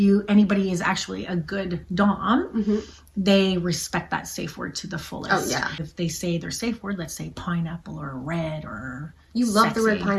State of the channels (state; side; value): identical; both; correlation 1.00